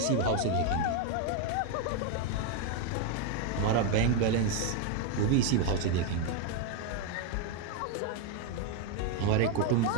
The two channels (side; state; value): both; different; correlation 0.01